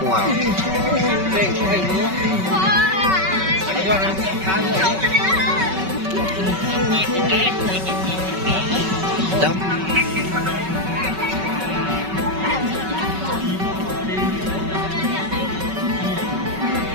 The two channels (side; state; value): left; late; 5.3 ms